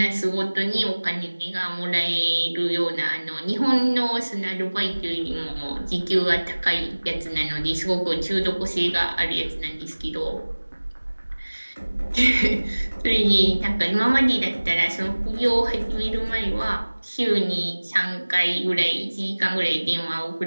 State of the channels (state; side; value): inverted; both; correlation -1.00